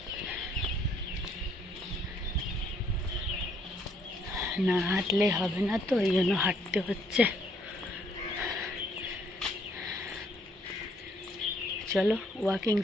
না হাঁটলে হবে না, তো এই জন্য হাঁটতে হচ্ছে। চলো, ওয়াকিং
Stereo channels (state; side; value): normal; both; correlation 0.66